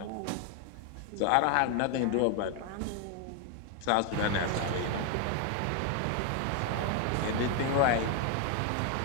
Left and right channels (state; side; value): different; both; correlation 0.00